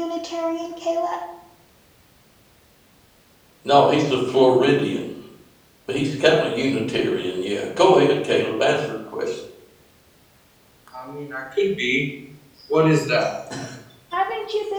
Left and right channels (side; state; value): both; identical; correlation 1.00